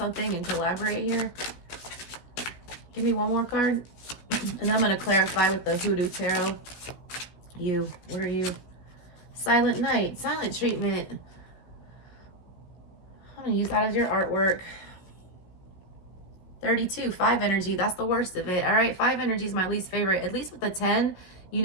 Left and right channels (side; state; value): right; late; 16 ms